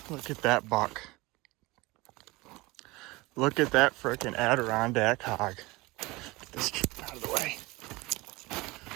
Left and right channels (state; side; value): quieter; left; 22.6 dB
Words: Look at that buck. Look at that frickin' Adirondack hog. Get this out of the way.